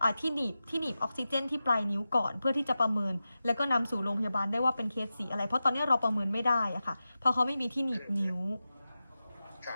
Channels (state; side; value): inverted; both; correlation -0.93